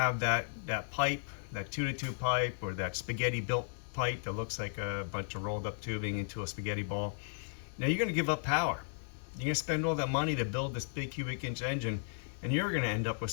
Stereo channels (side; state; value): right; silent; digital silence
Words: that pipe, that 2-to-2 pipe, or that spaghetti built pipe that looks like a bunch of rolled up tubing into a spaghetti ball, now you're going to give up power. You're going to spend all that money to build this big cubic inch engine, and you're going to end up with